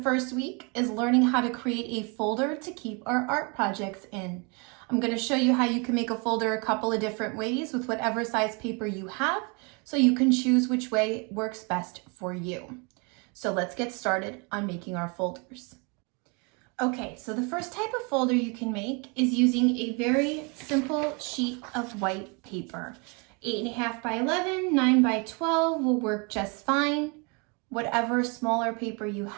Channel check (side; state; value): left; quieter; 32.2 dB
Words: week is learning how to create a folder to keep our art projects in. I'm going to show you how you can make a folder a couple of different ways with whatever size paper you have, so you can choose which way works best for you. So let's get started on making our folders. Okay, so the first type of folder you can make is using a very simple sheet of white paper. 8.5 by 11, 9 by 12 will work just fine. Whatever smaller paper you